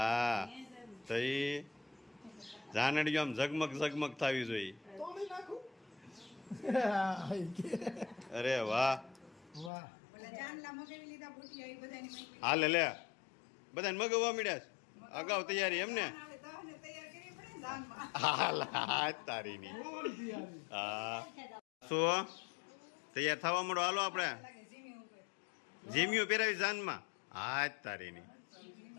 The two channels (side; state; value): right; drops out; at 9.7 s